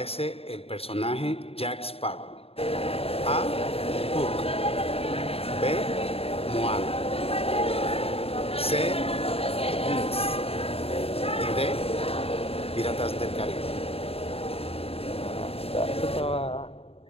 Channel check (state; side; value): late; right; 0.28 ms